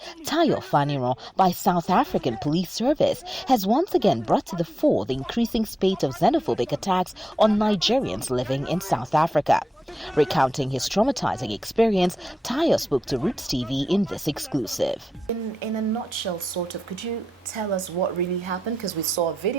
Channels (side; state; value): both; normal; correlation 0.90